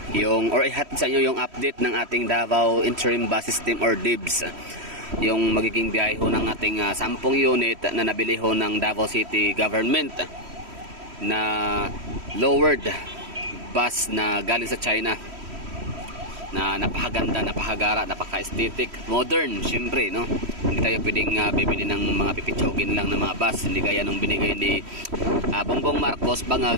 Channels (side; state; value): left; late; 3.1 ms